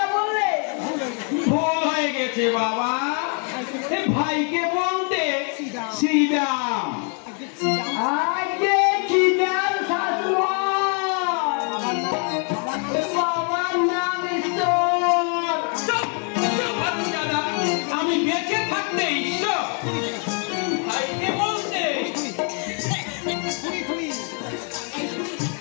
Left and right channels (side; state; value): right; quieter; 39.9 dB